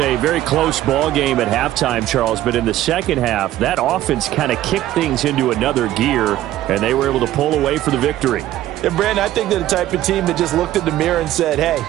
very close ball game at halftime, Charles, but in the second half, that offense kind of kicked things into another gear, and they were able to pull away for the victory. And, Brandon, I think they're the type of team that just looked in the mirror and said, hey,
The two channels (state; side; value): quieter; left; 14.0 dB